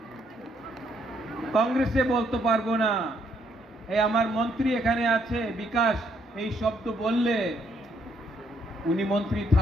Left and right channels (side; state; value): both; normal; correlation 0.71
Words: কংগ্রেসে বলতে পারবো না। এই আমার মন্ত্রী এখানে আছে বিকাশ, এই শব্দ বললে উনি মন্ত্রী